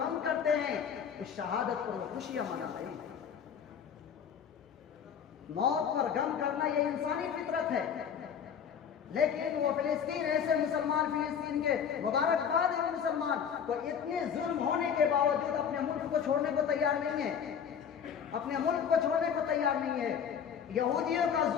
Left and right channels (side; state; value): right; quieter; 7.7 dB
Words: کرتے ہیں اس شہادت پر وہ خوشیاں منا رہے ہیں۔ موت پر غم کرنا یہ انسانی فطرت ہے، لیکن وہ فلسطین ایسے مسلمان، فلسطین کے مبارکباد ہے مسلمان، تو اتنے ظلم ہونے کے باوجود اپنے ملک کو چھوڑنے کو تیار نہیں ہے، اپنے ملک کو چھوڑنے کو تیار نہیں ہے۔ یہودیوں کا